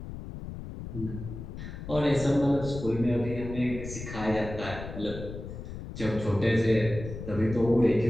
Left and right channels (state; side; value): noise; left; rumble, 10 dB below the sound